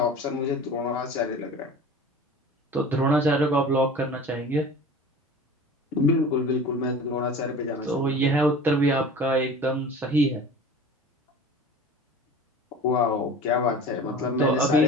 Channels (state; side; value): normal; both; correlation 0.39